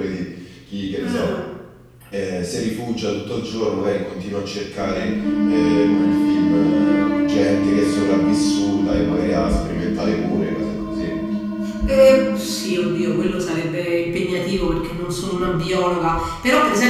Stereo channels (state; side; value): identical; both; correlation 1.00